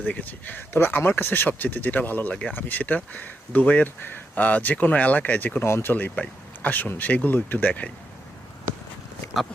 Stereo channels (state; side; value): normal; both; correlation 0.83